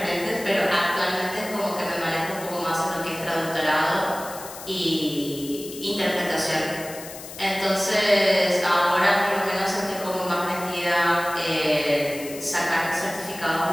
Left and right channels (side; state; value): left; noise; hiss, 13 dB below the sound